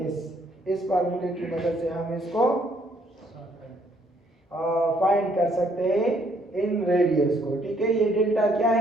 S. इस फार्मूले की मदद से हम इसको फाइंड कर सकते हैं इन रेडियस को। ठीक है। ये डेल्टा क्या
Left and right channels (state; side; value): normal; both; correlation 0.67